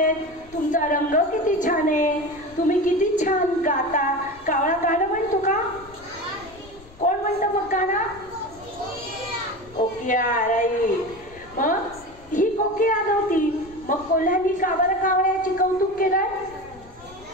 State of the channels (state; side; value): noise; left; rumble, 23 dB below the sound